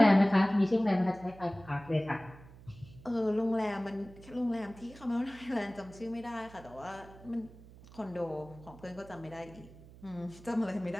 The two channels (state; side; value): noise; right; hum, 20 dB below the sound